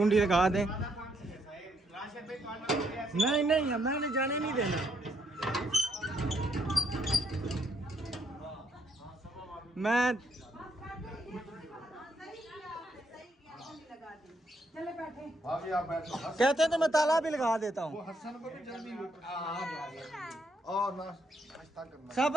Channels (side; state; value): both; normal; correlation 0.73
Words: लगा दें। नहीं नहीं, मैंने जाने नहीं देना। मैं चले बैठे। भाभी आप बैठो। कहते हैं तो मैं ताला भी लगा देता वो हूँ। हसन को भी जल्दी और नाश्ता करना। सब